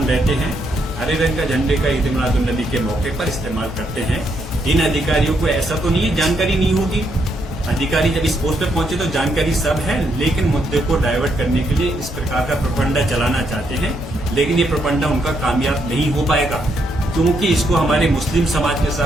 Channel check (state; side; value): normal; both; correlation 0.76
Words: रहते हैं, हरे रंग का झंडे का ईद मिलादुन नबी के मौके पर इस्तेमाल करते हैं। इन अधिकारियों को ऐसा तो नहीं है जानकारी नहीं होगी, अधिकारी जब इस पोस्ट पर पहुंचे तो जानकारी सब है, लेकिन मुद्दे को डाइवर्ट करने के लिए इस प्रकार का प्रोपेगेंडा चलाना चाहते हैं। लेकिन ये प्रोपेगेंडा उनका कामयाब नहीं हो पाएगा, क्योंकि इसको हमारे मुस्लिम समाज के